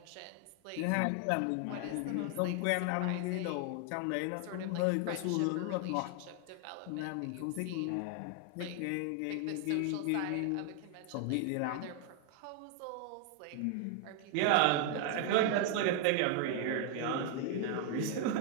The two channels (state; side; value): different; both; correlation 0.00